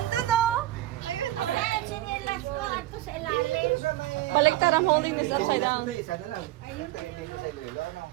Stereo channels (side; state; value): left; quieter; 16.2 dB